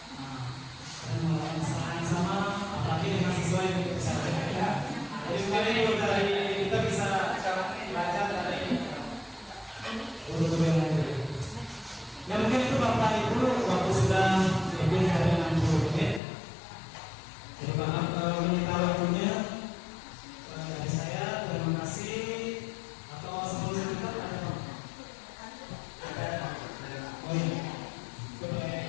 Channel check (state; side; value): drops out; right; at 16.2 s